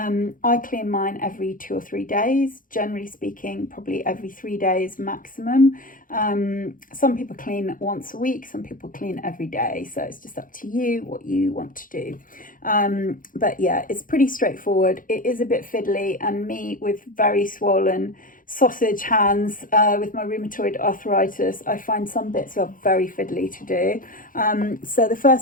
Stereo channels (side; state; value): right; late; 0.40 ms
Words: clean mine every 2 or 3 days, generally speaking, probably every 3 days maximum. Some people clean once a week, some people clean every day, so it's just up to you what you want to do. But yeah, it's pretty straightforward. It is a bit fiddly, and me with very swollen sausage hands with my rheumatoid arthritis, I find some bits are very fiddly to do. So the